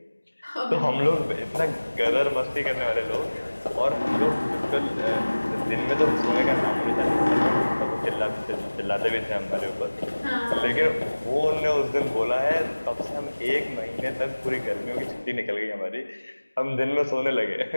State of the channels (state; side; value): inverted; both; correlation -1.00